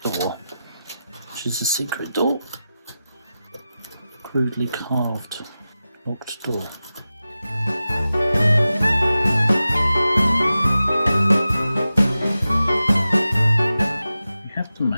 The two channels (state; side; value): inverted; both; correlation -0.93